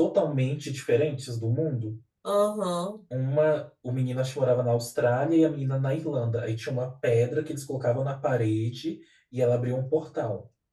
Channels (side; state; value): both; identical; correlation 1.00